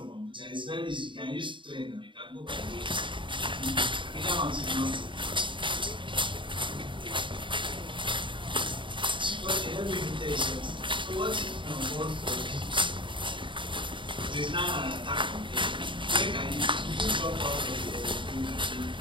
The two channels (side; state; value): left; late; 0.24 ms